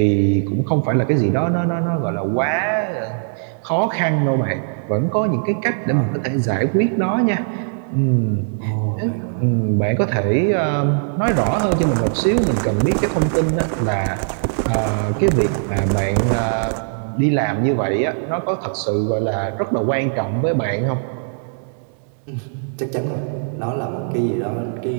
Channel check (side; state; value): left; silent; digital silence